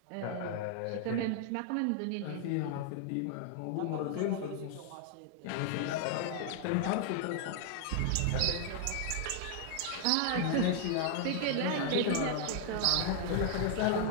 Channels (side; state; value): both; different; correlation 0.00